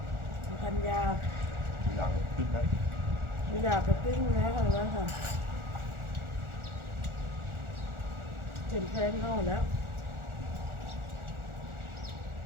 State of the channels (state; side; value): late; left; 1.4 ms